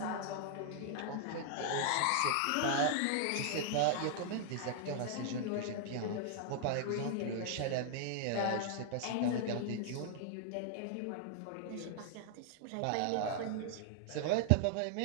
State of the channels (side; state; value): both; different; correlation -0.01